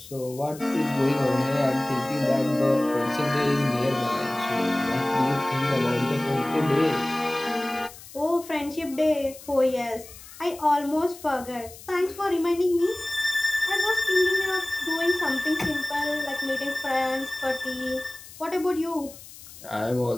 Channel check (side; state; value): left; noise; hiss, 17 dB below the sound